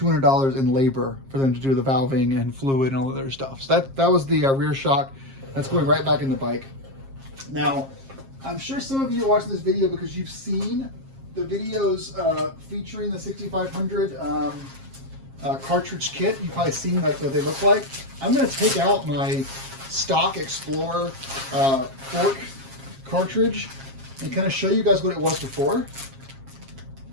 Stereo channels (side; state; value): left; late; 7.4 ms